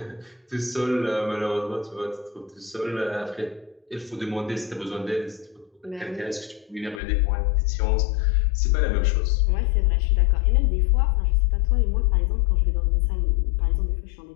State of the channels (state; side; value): drops out; right; at 7.0 s